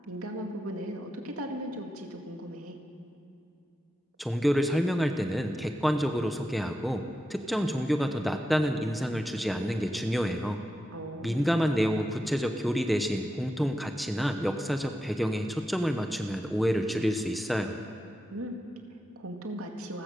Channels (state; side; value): normal; both; correlation 0.88